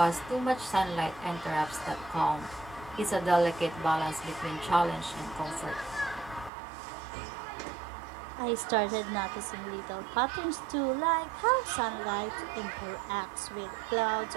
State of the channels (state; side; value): drops out; left; at 6.5 s